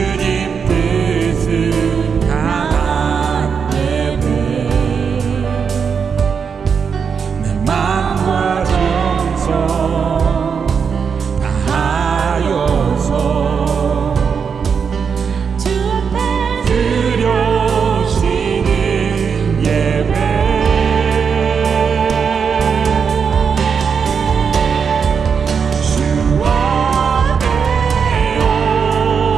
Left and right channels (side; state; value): left; quieter; 6.3 dB